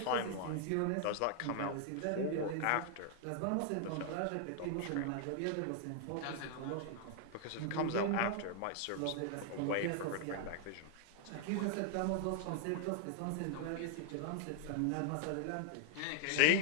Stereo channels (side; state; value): both; different; correlation 0.00